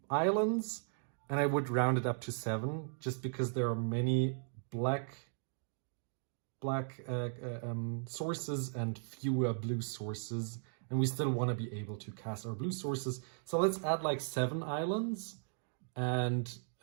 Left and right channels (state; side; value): silent; left; digital silence